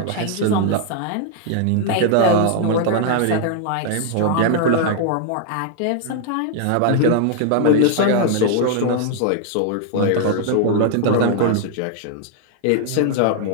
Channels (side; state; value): both; different; correlation 0.00